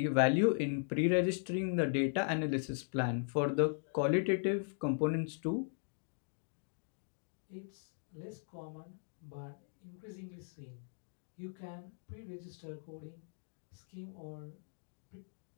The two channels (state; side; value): silent; right; digital silence